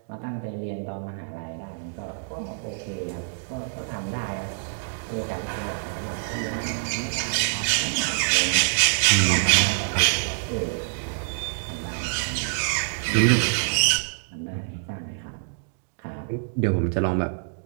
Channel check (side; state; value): left; silent; digital silence